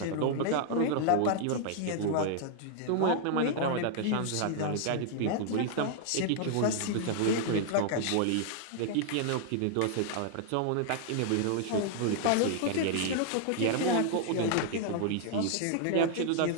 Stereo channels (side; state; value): both; different; correlation -0.01